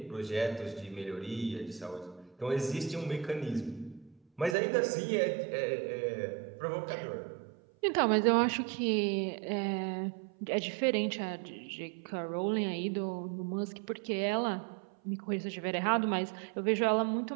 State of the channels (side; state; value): left; drops out; at 4.5 s